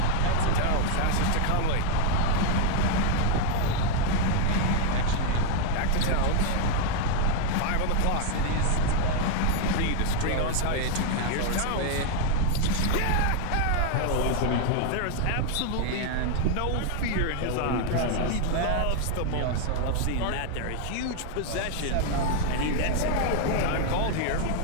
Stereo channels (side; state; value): both; different; correlation 0.00